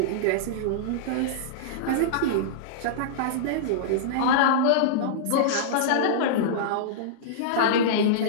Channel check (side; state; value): both; different; correlation -0.03